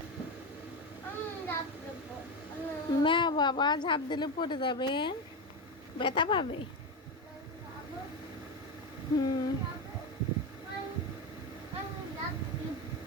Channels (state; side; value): normal; both; correlation 0.14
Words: না বাবা, ঝাঁপ দিলে পড়ে যাবে, ব্যথা পাবে। হুম।